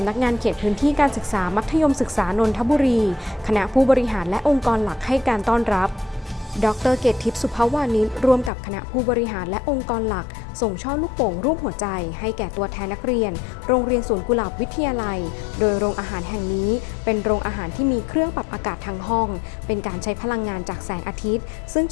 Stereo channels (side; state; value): right; drops out; at 8.5 s